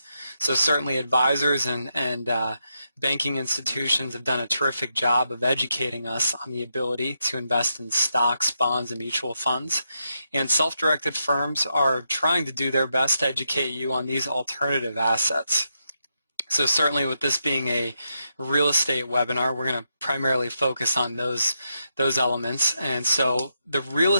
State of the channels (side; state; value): both; inverted; correlation -0.83